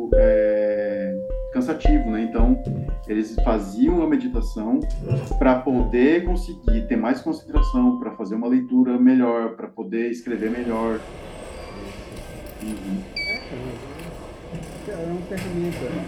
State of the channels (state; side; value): identical; both; correlation 1.00